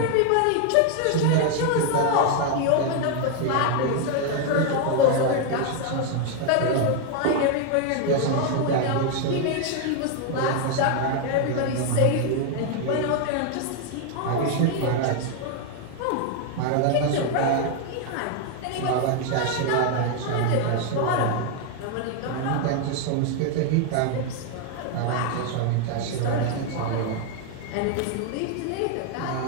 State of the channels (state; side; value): different; both; correlation 0.01